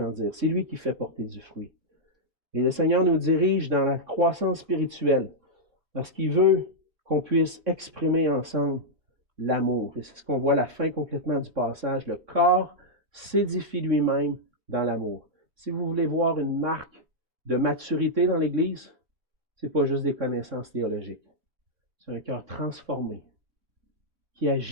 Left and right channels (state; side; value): late; left; 3.6 ms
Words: C'est lui qui fait porter du fruit. Et le Seigneur nous dirige dans la croissance spirituelle parce qu'il veut qu'on puisse exprimer ensemble l'amour. Et c'est ce qu'on voit à la fin complètement du passage. Le corps s'édifie lui-même dans l'amour. Si vous voulez voir une marque de maturité dans l'Église, ce n'est pas juste des connaissances théologiques. C'est un cœur transformé qui